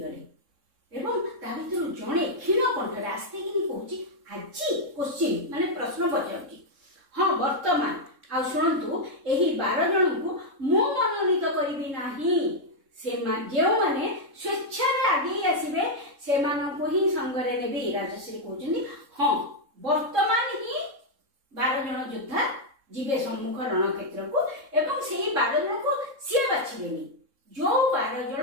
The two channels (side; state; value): left; late; 3.6 ms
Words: एवं ता भितर जणे क्षीण कंठरे आस्ते कि कहूची आजी क्वेश्चन माने प्रश्न पचाउची हां वर्तमान ଆଉ ଶୁଣନ୍ତୁ, ଏହି 12 ଜଣଙ୍କୁ ମୁଁ ମନୋନୀତ କରିବି ନାହିଁ। ଯେଉଁମାନେ ସ୍ୱେଚ୍ଛାରେ ଆଗେଇ ଆସିବେ ସେମାନଙ୍କୁ ହିଁ ସଙ୍ଗରେ ନେବି। ରାଜଶ୍ରୀ କହୁଛନ୍ତି ହଁ, ବର୍ତ୍ତମାନ ହିଁ 12 ଜଣ ଯୋଦ୍ଧା ଯିବେ ସମ୍ମୁଖ ରଣକ୍ଷେତ୍ରକୁ ଏବଂ ସେଇ 12 ଜଣଙ୍କୁ ସିଏ ବାଛିବେନି। ଯୋଉ 12